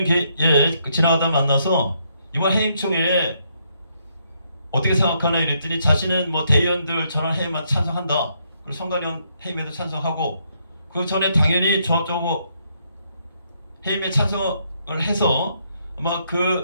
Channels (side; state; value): both; inverted; correlation -0.74